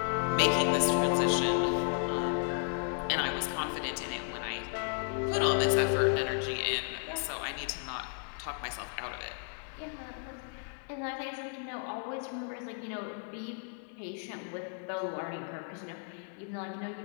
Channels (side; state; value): right; silent; 55 dB below the other